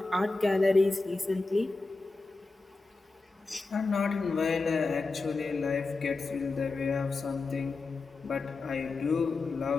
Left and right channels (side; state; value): right; quieter; 3.7 dB